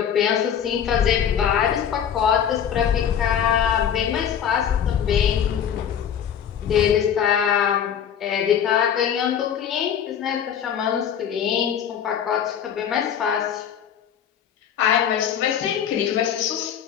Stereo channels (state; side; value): quieter; right; 8.7 dB